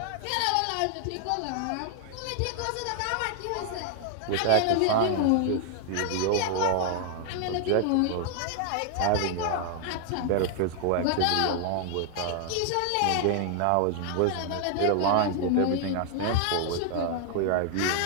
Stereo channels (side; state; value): both; different; correlation 0.00